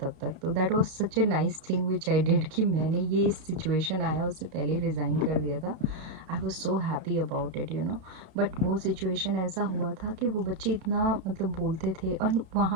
तक, तो that was such a nice thing which I did कि मैंने ये सिचुएशन आया उससे पहले रिज़ाइन कर दिया था, आई was so happy about it, but वो सिचुएशन ऐसा हुआ था कि वो बच्चे इतना मतलब बोलते थे, और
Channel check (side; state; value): left; late; 32 ms